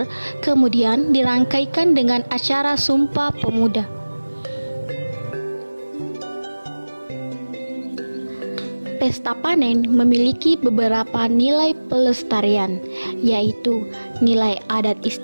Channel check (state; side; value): inverted; both; correlation -1.00